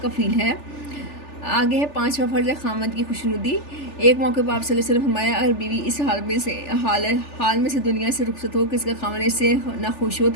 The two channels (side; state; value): right; late; 3.4 ms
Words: کفیل ہے۔ آگے ہے 5واں فرض ہے خاوند کی خوشنودی۔ ایک موقع پر آپ صلی اللہ علیہ وسلم فرمایا اگر بیوی اس حال میں سے دنیا سے رخصت ہو کہ اس کا خاوند اس سے نہ خوش ہو